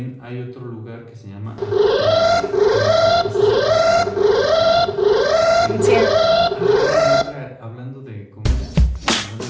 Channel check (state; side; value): identical; both; correlation 1.00